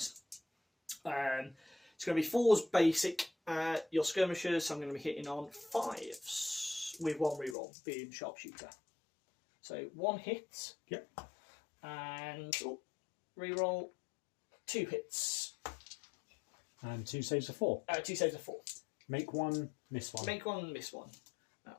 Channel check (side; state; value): right; drops out; at 7.6 s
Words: It's going to be 4s basic. Your skirmishers, I'm going to be hitting on 5s with 1 reroll, being sharpshooter. So 1 hit. Yep. And reroll 2 hits. And 2 saves of 4. 2 saves of 4. Make 1, miss 1. Make 1, miss 1.